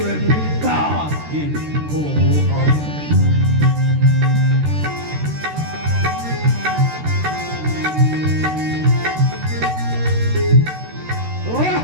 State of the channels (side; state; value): left; late; 13 ms